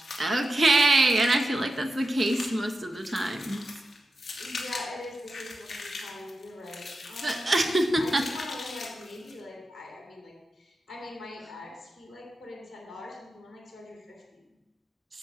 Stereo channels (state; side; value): normal; both; correlation 0.89